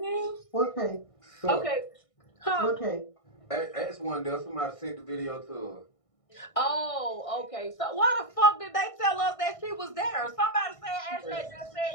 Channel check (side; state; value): right; late; 1.6 ms